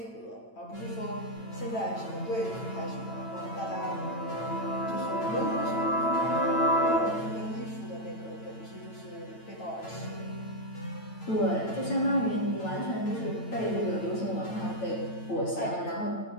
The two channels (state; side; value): late; right; 9.0 ms